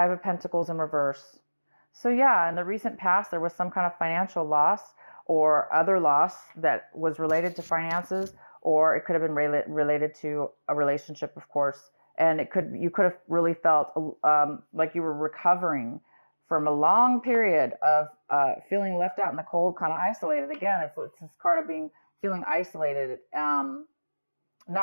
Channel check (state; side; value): inverted; both; correlation -1.00